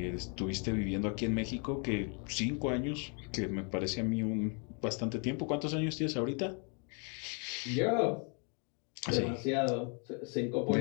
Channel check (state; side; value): quieter; right; 37.8 dB